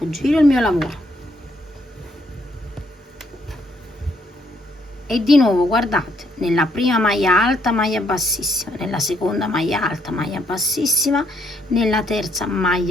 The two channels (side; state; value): both; normal; correlation 0.72